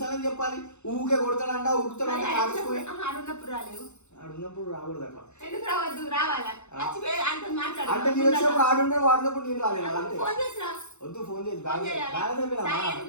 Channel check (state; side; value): late; right; 0.82 ms